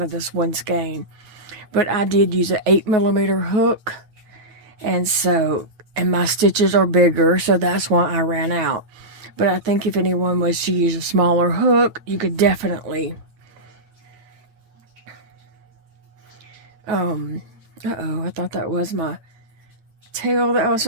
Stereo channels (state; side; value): late; left; 9.5 ms